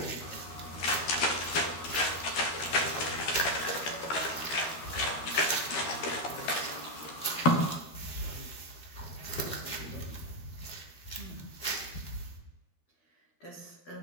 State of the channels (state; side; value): late; right; 13 ms